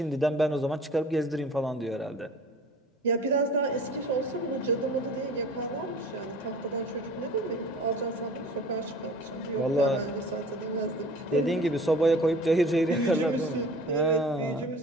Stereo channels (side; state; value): both; normal; correlation 0.45